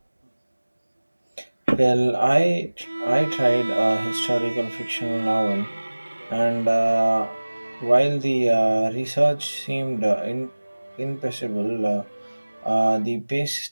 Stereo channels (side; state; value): both; inverted; correlation -1.00